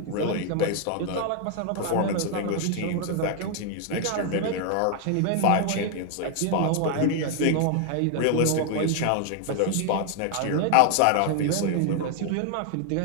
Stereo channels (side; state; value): both; different; correlation 0.00